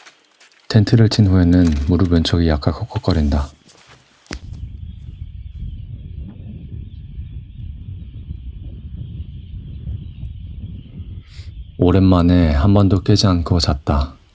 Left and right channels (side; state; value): both; identical; correlation 1.00